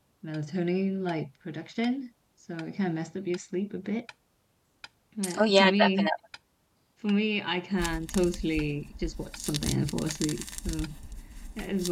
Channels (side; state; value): both; identical; correlation 1.00